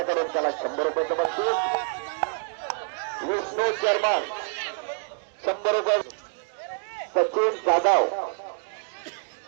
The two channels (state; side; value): silent; left; digital silence